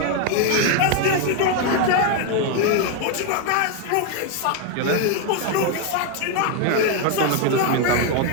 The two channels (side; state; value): both; different; correlation 0.01